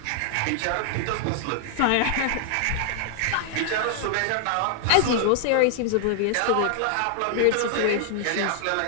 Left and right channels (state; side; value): different; both; correlation 0.00